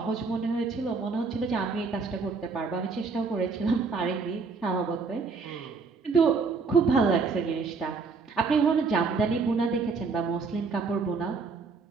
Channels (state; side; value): quieter; left; 4.6 dB